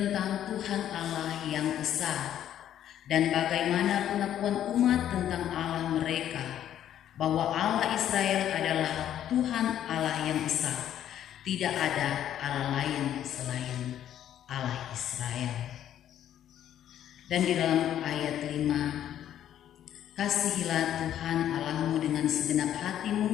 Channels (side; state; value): right; quieter; 10.9 dB